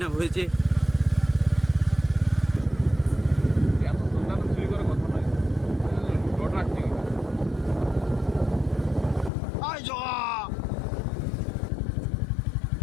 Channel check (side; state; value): right; drops out; at 9.3 s